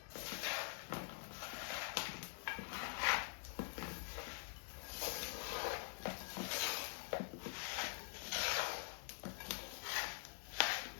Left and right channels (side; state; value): right; silent; digital silence